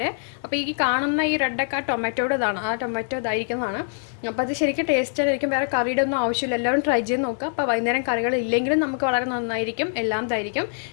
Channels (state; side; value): silent; right; digital silence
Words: അപ്പോൾ ഈ കാണുന്ന ഈ റെഡൊക്കെ ആ ടൊമാറ്റോയുടെ ഇതാണ്, ആ ടൊമാറ്റോ ഇതായിരിക്കുന്നതാണ്. അപ്പോൾ അത് ശരിക്കും ടേസ്റ്റ് ആയിരിക്കും. വേറെ കറിയുടെ ഒന്നും ആവശ്യമില്ല. എല്ലാവരും ട്രൈ ചെയ്ത് നോക്കുക. അപ്പോൾ വൈകുന്നേരം കറികൾ ഇല്ലെങ്കിലും നമുക്ക് വളരെ നന്നായിരിക്കും, എല്ലാം ഇതായിരിക്കും.